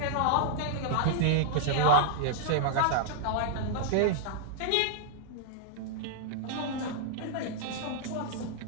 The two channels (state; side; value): different; both; correlation -0.01